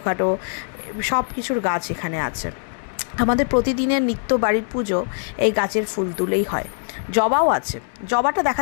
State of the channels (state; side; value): silent; right; digital silence